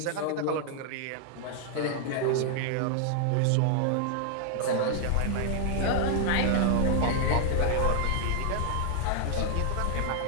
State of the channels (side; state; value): both; different; correlation 0.00